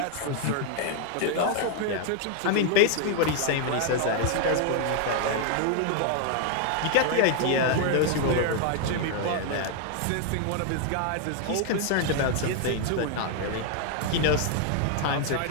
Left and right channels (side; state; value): both; different; correlation 0.00